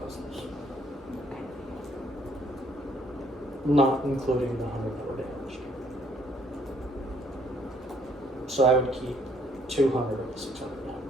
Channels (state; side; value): normal; both; correlation 0.65